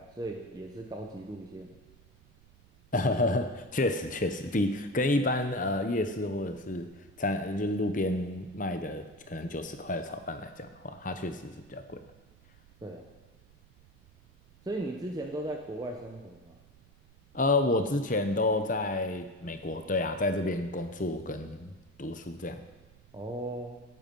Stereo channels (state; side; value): noise; right; rumble, 26 dB below the sound